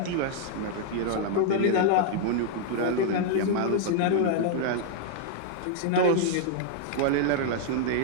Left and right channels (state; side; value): different; both; correlation -0.01